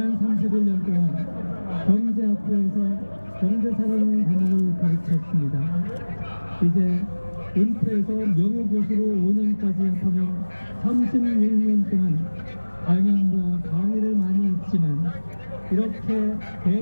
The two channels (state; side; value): inverted; both; correlation -1.00